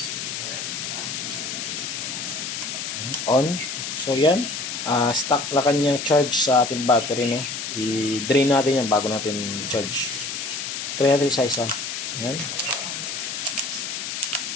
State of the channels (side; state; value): left; noise; hiss, 5 dB below the sound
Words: On. So yan, stock na kanyang charge sa ating battery, no. I-drain natin yan bago natin charge. Try natin isa-isa. Yan.